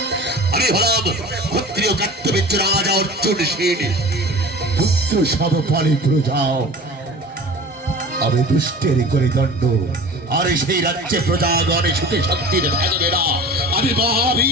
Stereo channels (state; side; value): normal; both; correlation 0.38